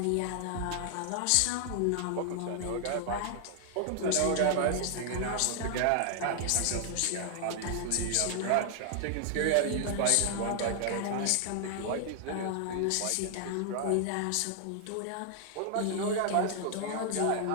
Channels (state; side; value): different; both; correlation 0.00